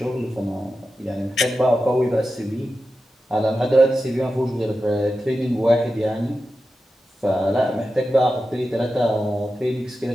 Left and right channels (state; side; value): normal; both; correlation 0.91